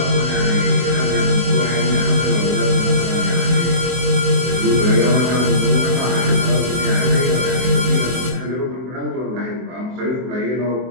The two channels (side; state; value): left; late; 23 ms